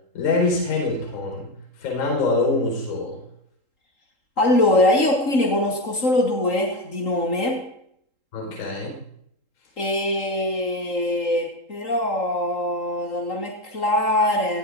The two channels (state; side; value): late; right; 3.8 ms